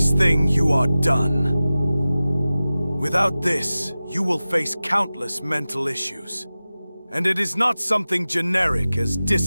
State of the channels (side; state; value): both; inverted; correlation -0.96